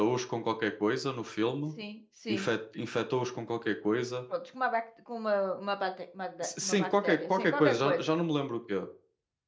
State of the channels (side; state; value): both; identical; correlation 1.00